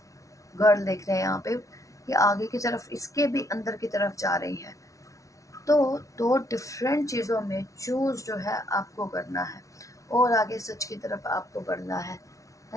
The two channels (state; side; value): late; right; 0.16 ms